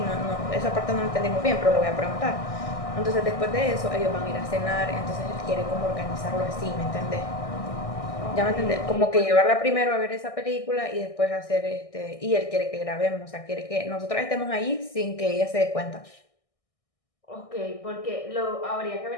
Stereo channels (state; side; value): late; right; 1.6 ms